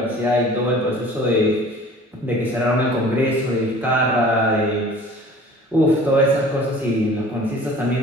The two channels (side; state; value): both; normal; correlation 0.46